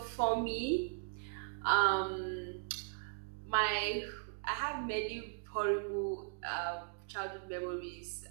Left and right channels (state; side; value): silent; left; digital silence